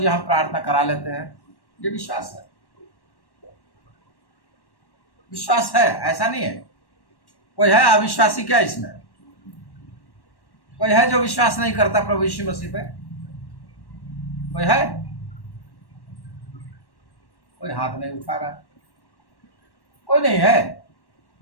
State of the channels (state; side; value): late; right; 1.1 ms